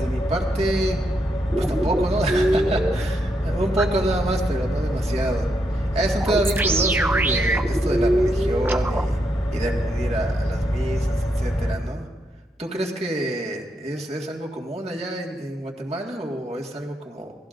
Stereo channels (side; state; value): both; normal; correlation 0.80